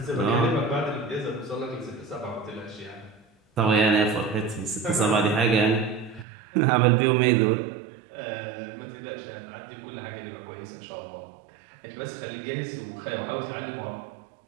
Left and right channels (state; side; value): drops out; left; at 6.2 s